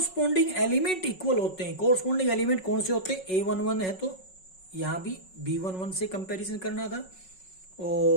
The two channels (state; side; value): late; right; 5.4 ms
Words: एलिमेंट इक्वल होते हैं। कोरस्पॉन्डिंग एलिमेंट कौन से होते हैं, a11 है तो यहां भी b11 से कंपैरिजन करना था,